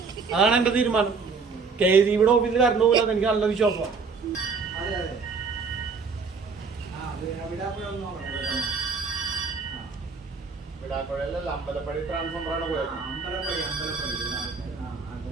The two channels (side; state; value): left; quieter; 4.9 dB